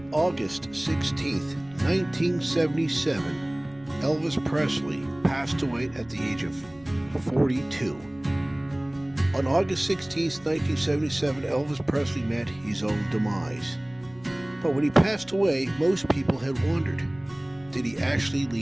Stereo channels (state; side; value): noise; right; hum, 27 dB below the sound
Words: August 16th, 1977, Elvis Presley passed away at the age of 42. On August 16th, 1977, Elvis Presley met his own demise. But when he passed away, most people had wondered, did he actually